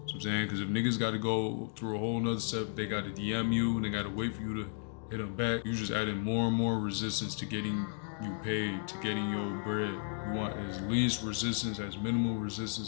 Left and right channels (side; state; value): right; silent; 55 dB below the other